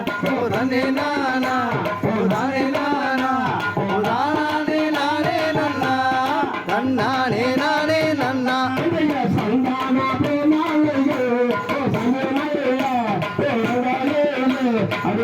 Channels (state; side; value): identical; both; correlation 1.00